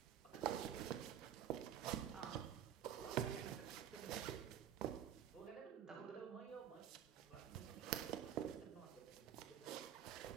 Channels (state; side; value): quieter; left; 9.8 dB